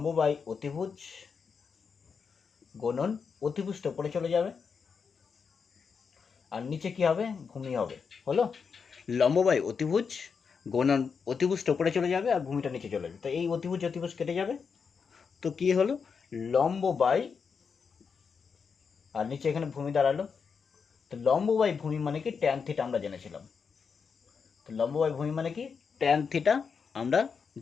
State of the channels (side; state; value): right; quieter; 5.9 dB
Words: বাই অতিভুজ গুণন অতিভুজটা উপরে চলে যাবে, আর নিচে কি হবে? ভূমি হবে। হলো লম্ব বাই অতিভুজ গুণন অতিভুজটা উপরে চলে যাবে আর ভূমিটা নিচে চলে যাবে। তো এই অতিভুজ অতিভুজ কেটে যাবে, তো কি হলো? লম্ব বাই, আর নিচে এখানে ভূমি দাঁড়ালো। তো লম্ব বাই ভূমি মানে কি? ট্যান থিটা আমরা জেনেছিলাম। তো লম্ব বাই ভূমি মানে কি? ট্যান থিটা আমরা